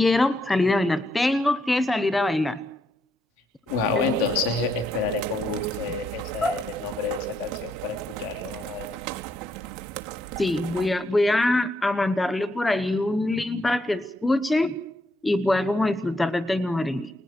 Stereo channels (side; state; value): both; normal; correlation 0.77